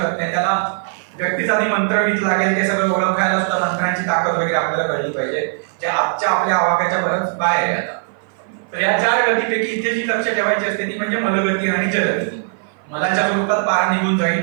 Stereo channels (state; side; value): silent; left; 57 dB below the other